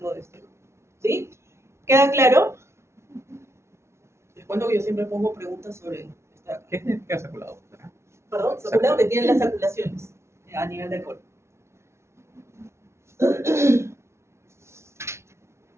de este grupo. ¿Sí? ¿Queda claro? Les cuento que yo siempre pongo preguntas sobre esta. ¿Qué significa saculado? Perdón, saculado, que tienen las saculaciones a nivel del cuerpo.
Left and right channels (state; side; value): late; left; 0.13 ms